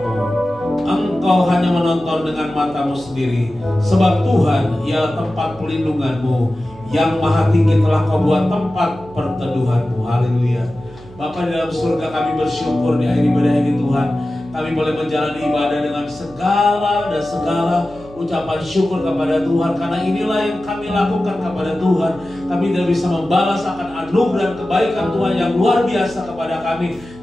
Engkau hanya menonton dengan matamu sendiri, sebab Tuhan ialah tempat pelindunganmu. Yang Maha Tinggi telah kau buat tempat perteduhanmu. Haleluya. Bapa di dalam surga, kami bersyukur di akhir ibadah ini Tuhan, kami boleh menjalani ibadah dengan segala ucapan syukur kepada Tuhan, karena inilah yang kami lakukan kepada Tuhan. Kami tidak bisa membalas akan anugerah dan kebaikan Tuhan yang luar biasa kepada kami,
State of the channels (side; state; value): right; noise; hum, 21 dB below the sound